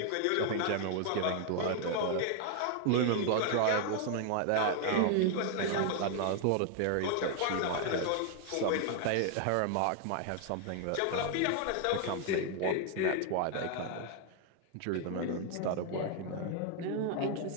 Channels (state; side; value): different; both; correlation 0.00